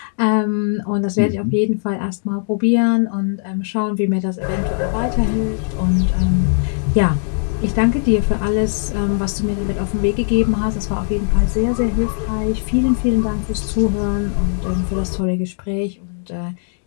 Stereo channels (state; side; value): silent; right; digital silence